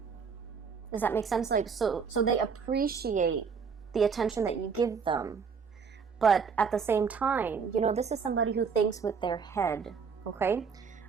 Does that make sense? Like, so they appreciate the attention that you give them, but at the same time, this is somebody who thinks with their head. Okay.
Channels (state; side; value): quieter; left; 5.8 dB